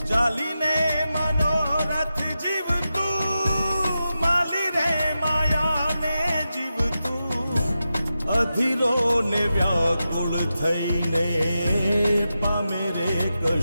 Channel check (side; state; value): both; inverted; correlation -0.90